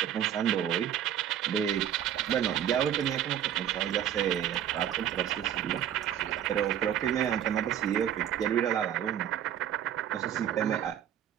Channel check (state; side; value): quieter; left; 10.3 dB